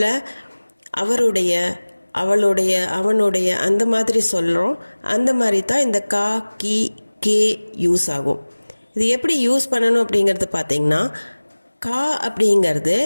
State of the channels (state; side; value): inverted; both; correlation -1.00